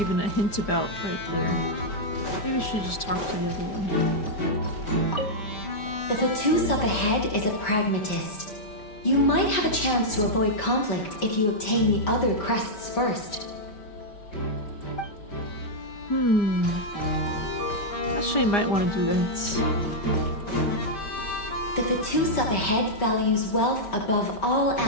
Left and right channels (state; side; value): late; right; 4.9 ms